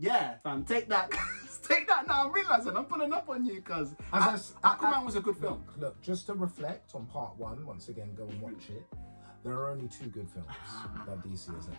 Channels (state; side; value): inverted; both; correlation -1.00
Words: fam. Take that. Take that now. I'm realizing I'm pulling up on you because Aquaman was a good film. Look, just to reflect on part one, once again, go and watch it. There are only 2 good films that DC has ever